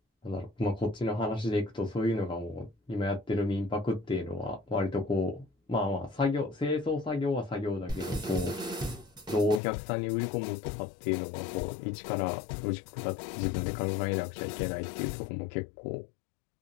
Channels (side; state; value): right; drops out; at 9.6 s